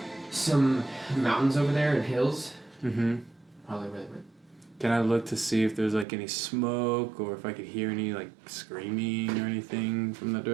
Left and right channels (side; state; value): left; drops out; at 6.1 s